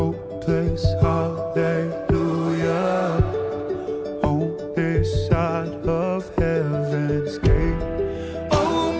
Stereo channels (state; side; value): identical; both; correlation 1.00